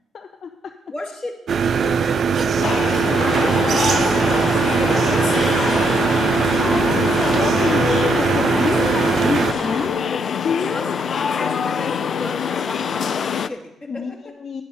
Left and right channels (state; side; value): normal; both; correlation 0.74